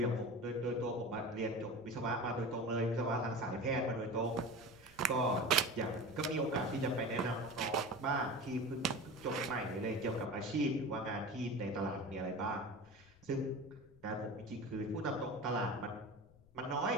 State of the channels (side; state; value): left; noise; rumble, 26 dB below the sound